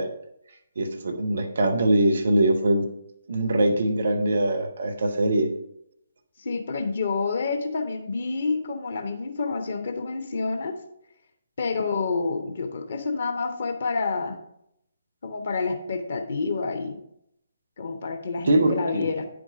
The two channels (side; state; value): both; inverted; correlation -0.81